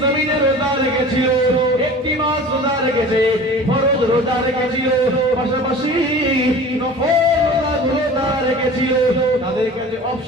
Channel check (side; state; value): both; normal; correlation 0.40